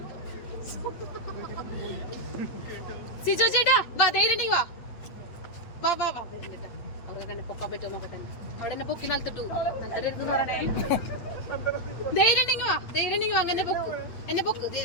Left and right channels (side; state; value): right; late; 8.7 ms